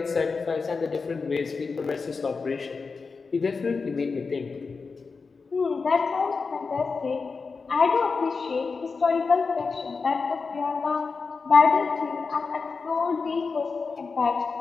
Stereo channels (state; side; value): quieter; right; 4.7 dB